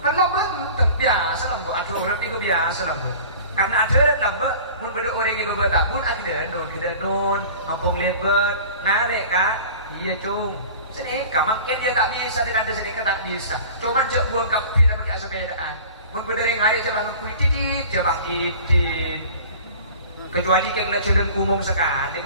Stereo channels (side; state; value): both; inverted; correlation -0.42